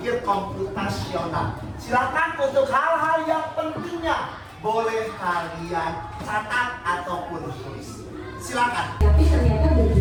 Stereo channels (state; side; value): identical; both; correlation 1.00